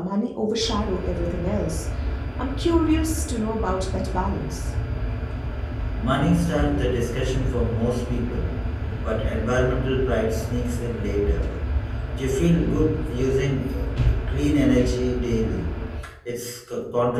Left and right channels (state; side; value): identical; both; correlation 1.00